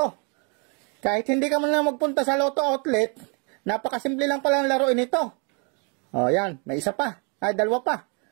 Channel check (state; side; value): quieter; left; 35.8 dB